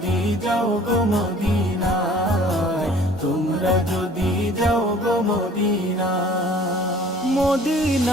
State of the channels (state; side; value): normal; both; correlation 0.51